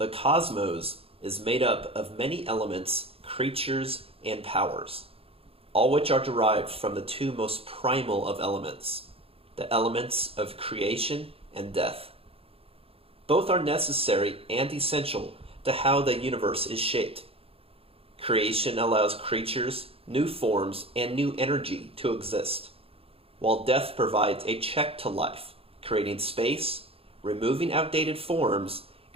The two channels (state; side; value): late; left; 0.28 ms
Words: cosmos is made up of many elements, creatures, and powers, all which are derived from the two most primal of elements, the elements of creation and death. Both are necessary and essential to how the universe is shaped. Creation allows creatures, new forms, and new energy to exist, while death provides a check to life, creating space, removing outdated forms,